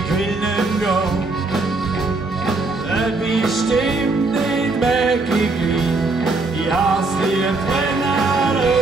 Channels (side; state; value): left; quieter; 3.5 dB